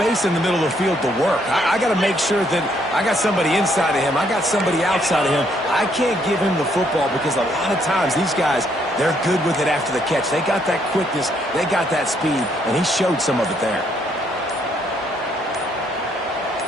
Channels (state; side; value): normal; both; correlation 0.70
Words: in the middle of the field to work. I got to make sure that I got somebody inside of him. I got somebody outside of him. I can't give him the football because a lot of times these guys, they're good with it after the catch. They got that quickness. They got that speed, and he showed some of it there.